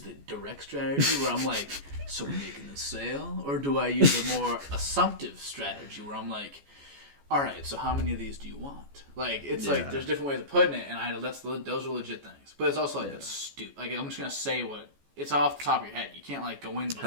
the direct strategy where I'm like, so we're making the sale? Or do I use a more assumptive strategy where I'm like, all right, so how many of these do you want? Like, it's like, there's different ways of putting it, and those are legit things. But it's also like, it's stupid. Like, I'm just going to say it's off the top of your head. You can't, like, go in before.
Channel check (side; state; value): left; late; 14 ms